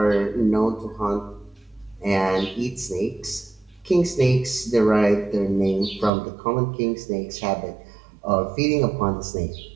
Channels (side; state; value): left; drops out; at 6.1 s